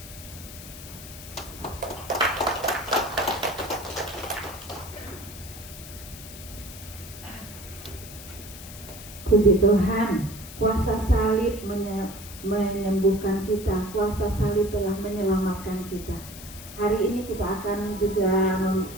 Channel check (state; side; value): noise; left; hiss, 14 dB below the sound